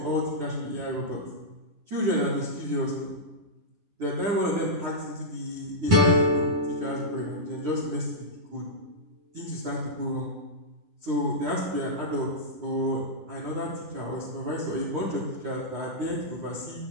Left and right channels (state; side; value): late; left; 10 ms